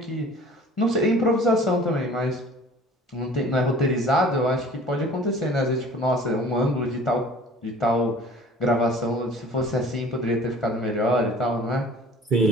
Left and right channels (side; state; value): both; normal; correlation 0.47